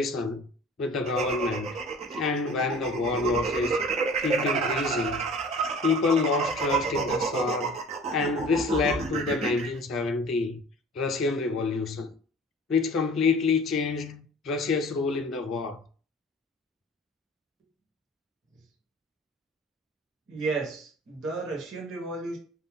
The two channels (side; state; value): both; normal; correlation 0.44